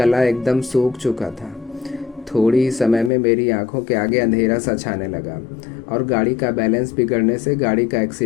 एकदम सूख चुका था। थोड़ी ही समय में मेरी आंखों के आगे अंधेरा सा छाने लगा और गाड़ी का बैलेंस बिगड़ने से गाड़ी का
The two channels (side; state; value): right; drops out; at 3.1 s